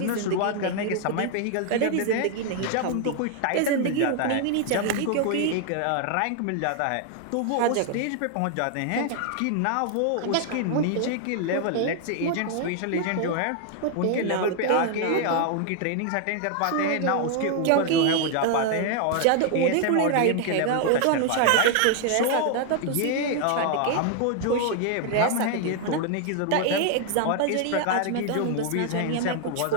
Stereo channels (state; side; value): different; both; correlation 0.00